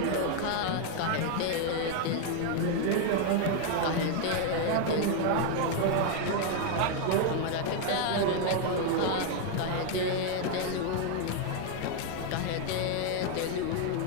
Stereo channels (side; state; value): both; different; correlation 0.01